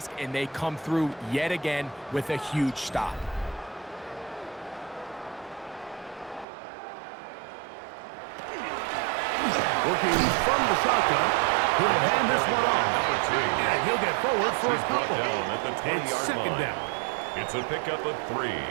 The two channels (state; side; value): drops out; left; at 6.5 s